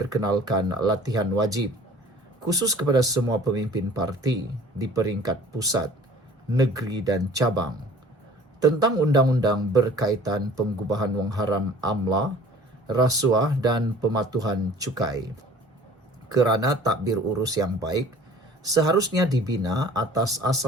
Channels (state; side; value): normal; both; correlation 0.49